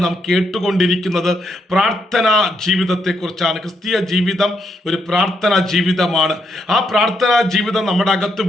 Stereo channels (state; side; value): normal; both; correlation 0.78